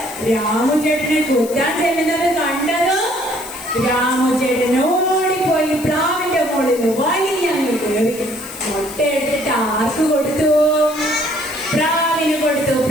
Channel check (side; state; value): left; noise; hiss, 14 dB below the sound